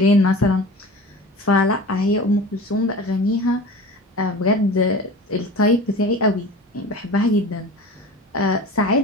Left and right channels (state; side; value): normal; both; correlation 0.37